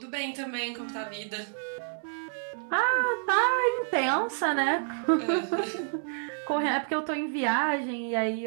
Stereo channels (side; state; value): left; silent; 57 dB below the other